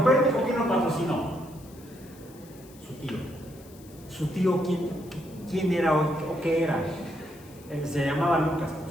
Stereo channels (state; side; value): noise; left; hiss, 24 dB below the sound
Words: ¿quién lo patrocinó? Su tío. ¿Su tío quién era o qué era? Se llamaba Lucas, por